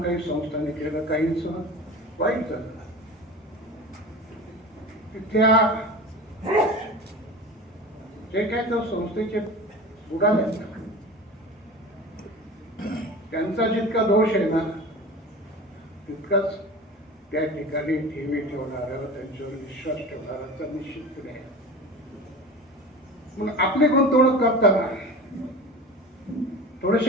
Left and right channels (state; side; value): normal; both; correlation 0.34